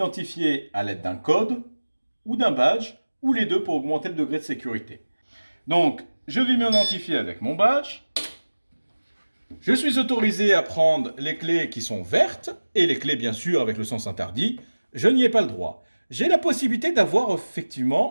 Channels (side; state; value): both; inverted; correlation -1.00